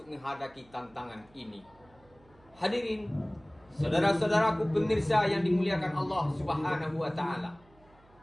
menghadapi tantangan ini? Hadirin, saudara-saudaraku pemirsa yang dimuliakan Allah Subhanahu wa taala.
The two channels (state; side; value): noise; right; hum, 29 dB below the sound